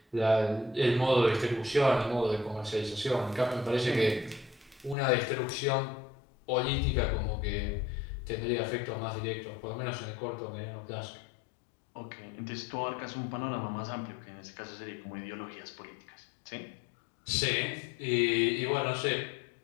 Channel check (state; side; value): drops out; right; at 5.0 s